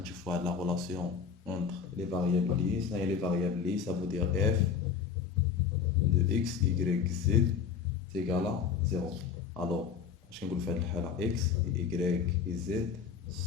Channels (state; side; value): quieter; right; 6.7 dB